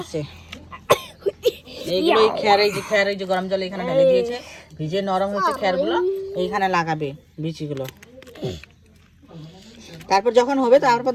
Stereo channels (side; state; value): both; identical; correlation 1.00